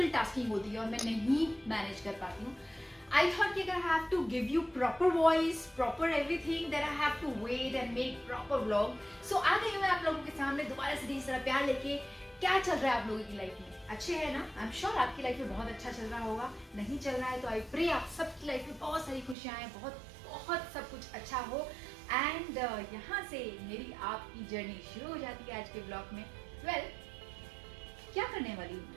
tasking होती है और मैं नहीं manage कर पाती हूँ. I thought कि अगर I have to give you proper voice, proper everything, then I have to wait and make proper vlog. So आ गई मैं आप लोगों के सामने दोबारा से ढेर सारा प्यार लेके. क्या चल रहा है आप लोगों की लाइफ में? अच्छे है ना? I'm sure आपकी लाइफ में बहुत अच्छा चल रहा होगा. नहीं चल रहा है तो I pray आप सबकी लाइफ में बहुत सारी खुशियाँ आए, बहुत सब कुछ अच्छा हो. एंड यहाँ से मेरी आपकी जर्नी शुरू हो जाती है आज के ब्लॉग में. वेल, क्या करने वाली हूँ?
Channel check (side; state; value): left; drops out; at 19.4 s